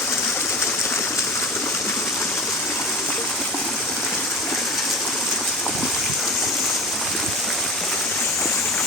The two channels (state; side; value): normal; both; correlation 0.34